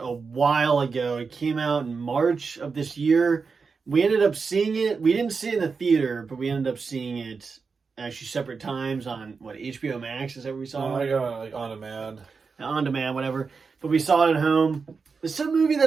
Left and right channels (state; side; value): quieter; left; 5.0 dB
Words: a while ago. It came out in March of this year. We ended up seeing it. We didn't see it in the theater, but we ended up seeing it actually separate times on HBO Max. Is that where we saw I it? got on demand. On demand, whatever. But we saw it at home. It's a movie